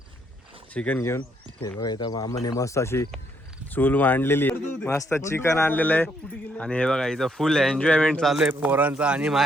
चिकन घेऊन. हे बघा इथं मामाने मस्त अशी चूल मांडलेली मस्त चिकन आणलेलं आहे आणि हे बघा इथं फुल एन्जॉयमेंट चालू आहे पोरांचा. आणि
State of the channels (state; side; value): normal; both; correlation 0.72